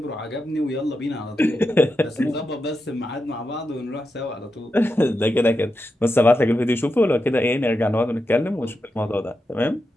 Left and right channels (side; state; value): both; normal; correlation 0.88